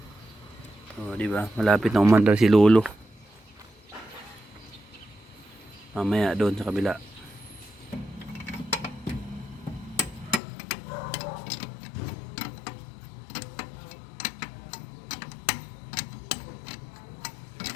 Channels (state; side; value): drops out; right; at 10.4 s